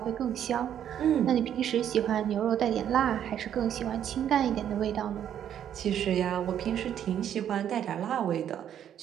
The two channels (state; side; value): quieter; left; 9.9 dB